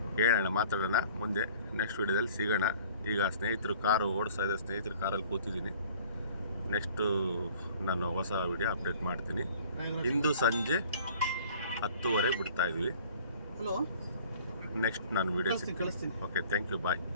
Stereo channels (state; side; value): inverted; both; correlation -0.50